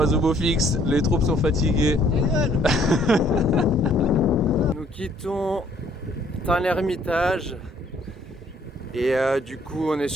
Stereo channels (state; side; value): normal; both; correlation 0.63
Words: au beau fixe, les troupes sont fatiguées. Nous quittons Tain-l'Hermitage et du coup on est